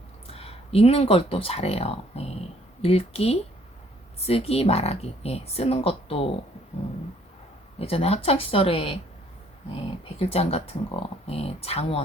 읽는 걸 또 잘해요. 예, 읽기, 쓰기, 말하기. 예, 쓰는 것도 예전에 학창 시절에 백일장 같은 거,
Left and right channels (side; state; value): both; normal; correlation 0.63